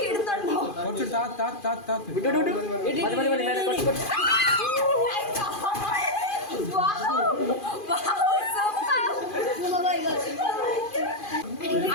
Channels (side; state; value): right; late; 2.4 ms